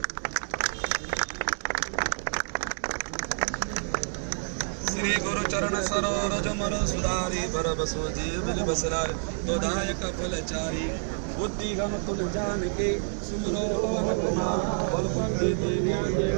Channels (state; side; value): silent; left; digital silence